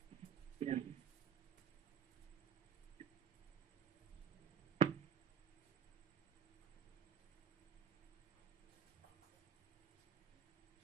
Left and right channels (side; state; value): left; quieter; 8.6 dB